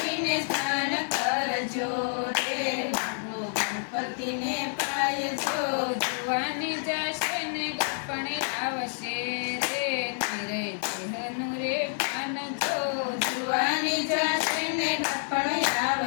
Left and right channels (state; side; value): silent; right; digital silence